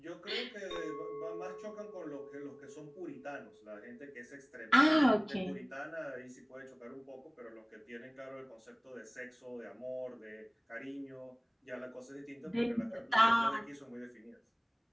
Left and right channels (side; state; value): both; identical; correlation 1.00